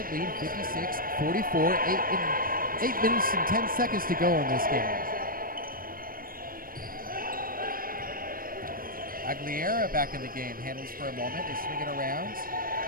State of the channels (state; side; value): late; left; 0.41 ms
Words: lead, 56-44, 8 minutes and 10 seconds to go in this game. Aguilera back in the game, handles for a moment, they swing it around.